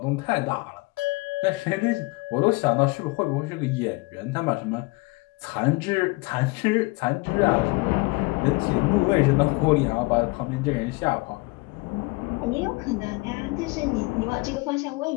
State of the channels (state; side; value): quieter; right; 25.6 dB